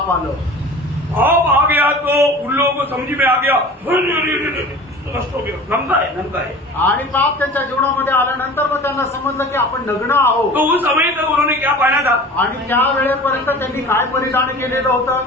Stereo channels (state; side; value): normal; both; correlation 0.40